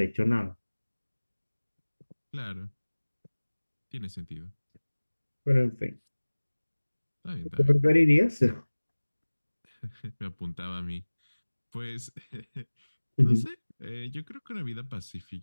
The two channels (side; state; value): both; inverted; correlation -1.00